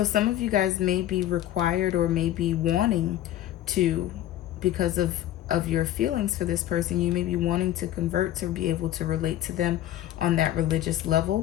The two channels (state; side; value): quieter; right; 12.9 dB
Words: some of you guys may be required or may be wanting to, because of your feelings for this person, you may be wanting to convert to be able to relate to them on that religious